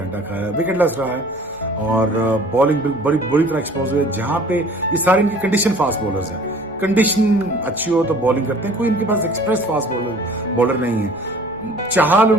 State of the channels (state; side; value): noise; left; rumble, 28 dB below the sound